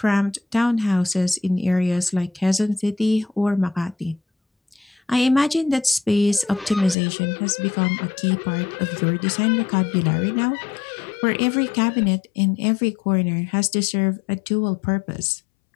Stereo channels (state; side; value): drops out; right; at 7.0 s